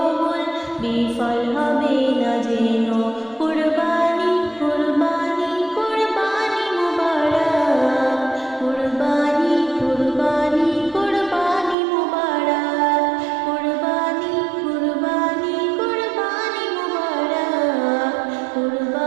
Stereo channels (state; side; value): drops out; left; at 11.8 s